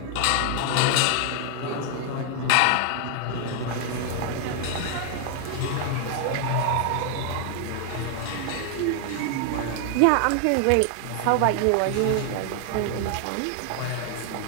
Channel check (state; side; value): different; both; correlation 0.00